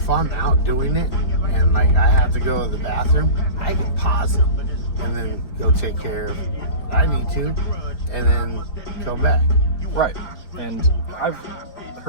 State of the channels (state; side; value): late; right; 4.6 ms